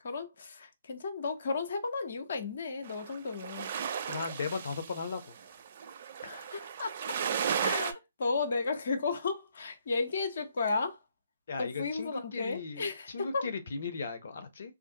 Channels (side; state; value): both; inverted; correlation -0.71